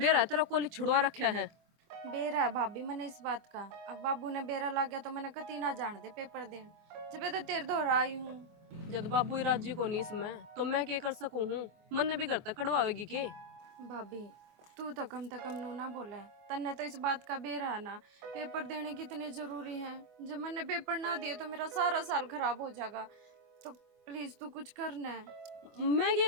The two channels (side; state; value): left; late; 24 ms